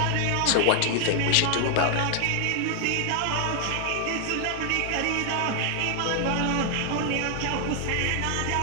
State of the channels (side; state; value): both; different; correlation 0.00